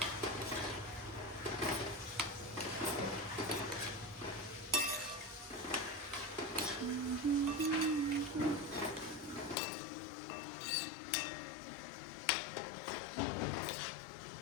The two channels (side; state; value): right; drops out; at 9.6 s